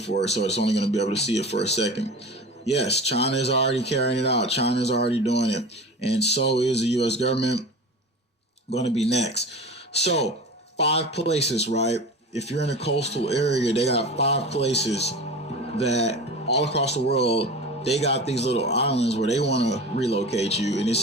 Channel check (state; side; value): normal; both; correlation 0.33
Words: it. So it's only going to be able to see it for a second. Yes, China is already carrying it out. China is already doing it. And so is the U.S. government going to be next. So 5 places, right? If you're in a coastal area, they got 5 places that all across the world, they got these little islands where they want to relocate you. And it